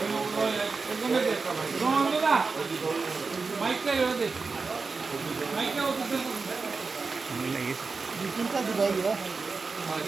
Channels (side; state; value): left; quieter; 4.4 dB